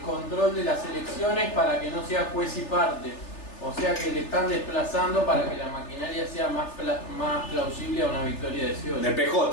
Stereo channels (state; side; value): late; right; 3.4 ms